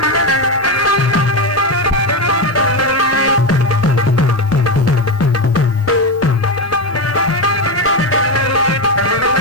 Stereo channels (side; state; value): both; normal; correlation 0.12